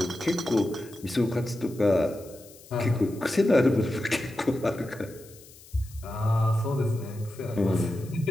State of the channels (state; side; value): noise; left; hiss, 22 dB below the sound